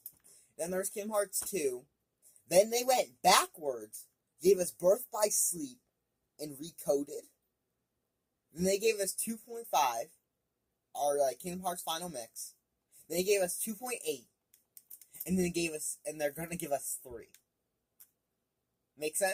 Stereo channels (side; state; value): both; identical; correlation 1.00